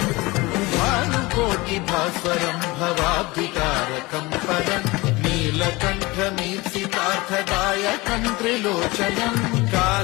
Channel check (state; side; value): quieter; right; 22.6 dB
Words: भास्वरं भवाब्धिकारकं परं नीलकण्ठमीप्सितार्थदायकं त्रिलोचनं